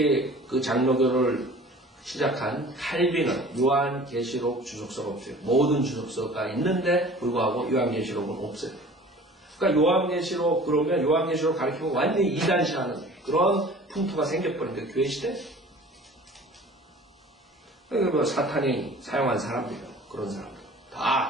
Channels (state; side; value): normal; both; correlation 0.45